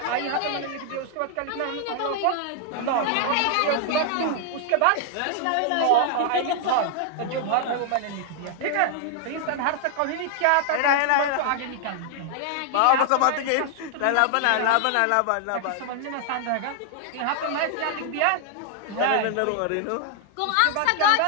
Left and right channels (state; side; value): different; both; correlation 0.00